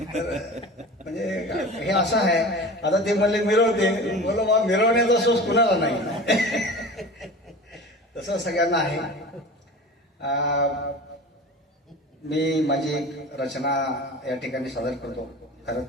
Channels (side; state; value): both; normal; correlation 0.35